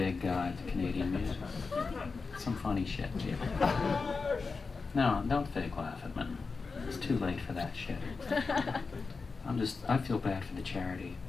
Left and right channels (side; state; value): right; quieter; 4.5 dB